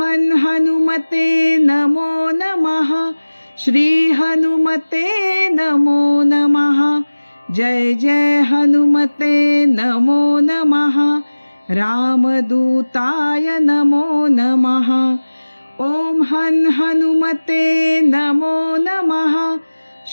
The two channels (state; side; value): inverted; both; correlation -1.00